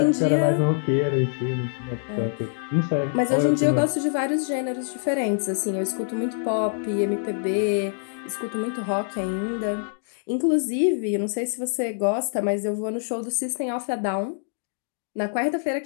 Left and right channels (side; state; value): right; silent; digital silence